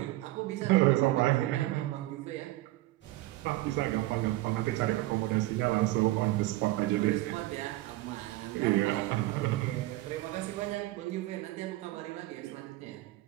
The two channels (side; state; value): left; quieter; 17.5 dB